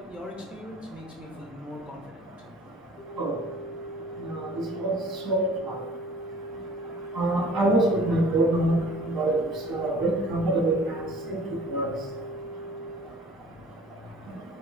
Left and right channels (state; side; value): normal; both; correlation 0.49